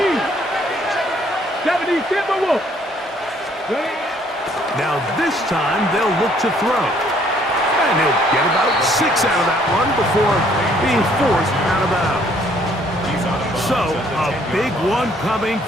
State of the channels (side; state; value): both; normal; correlation 0.63